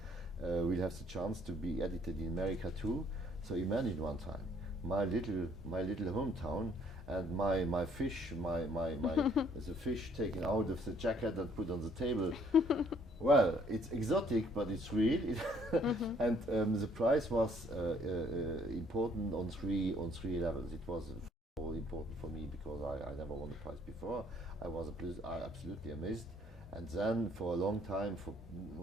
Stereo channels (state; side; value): normal; both; correlation 0.62